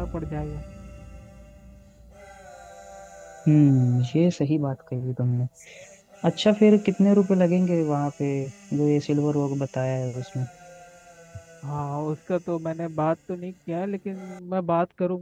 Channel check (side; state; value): both; identical; correlation 1.00